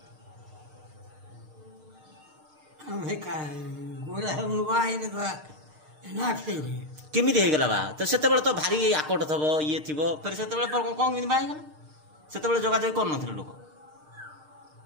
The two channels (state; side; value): late; left; 6.5 ms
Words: केमी होगला बा तो से तो भारी आकट थब ये थी फिर से कौन बाहला से जोगाजोग कर लोक